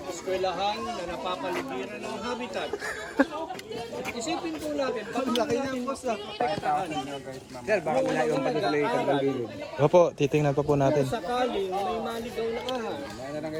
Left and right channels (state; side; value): identical; both; correlation 1.00